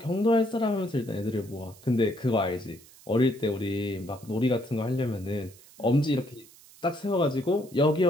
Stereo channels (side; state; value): right; noise; hiss, 23 dB below the sound